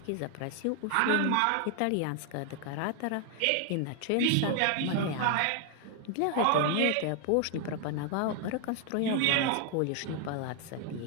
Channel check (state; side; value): different; both; correlation 0.00